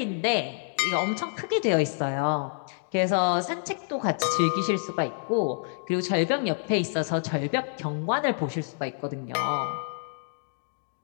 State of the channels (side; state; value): right; silent; digital silence